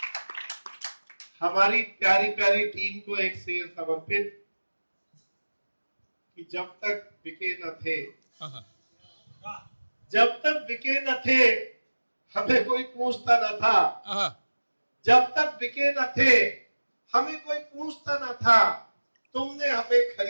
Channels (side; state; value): both; inverted; correlation -1.00